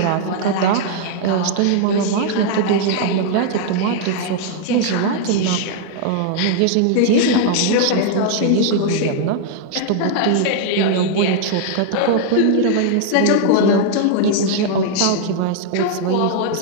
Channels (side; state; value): both; different; correlation 0.00